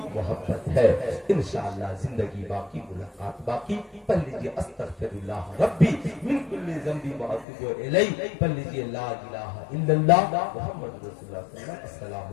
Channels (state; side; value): drops out; right; at 7.5 s